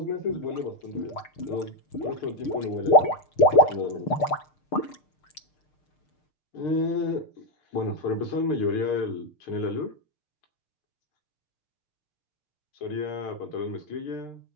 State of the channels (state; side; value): late; right; 6.6 ms